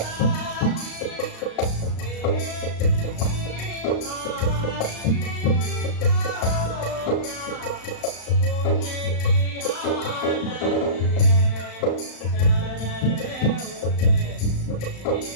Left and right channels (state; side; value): late; right; 35 ms